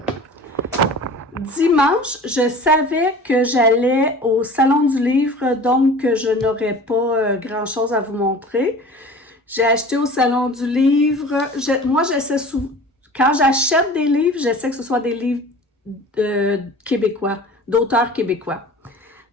Dimanche, je savais que j'allais au Salon du Livre, donc je n'aurais pas grand-chose à vous montrer. J'ai acheté au Salon du Livre. Moi, j'essaie quand j'achète des livres, j'essaie que ce soit des livres québécois, d'auteurs québécois.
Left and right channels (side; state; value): both; normal; correlation 0.41